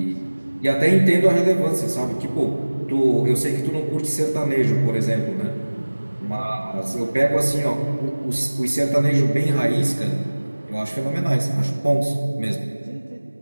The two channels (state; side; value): inverted; both; correlation -1.00